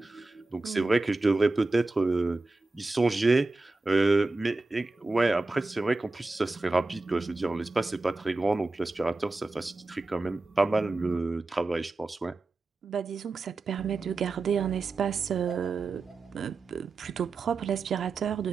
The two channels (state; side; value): quieter; left; 3.3 dB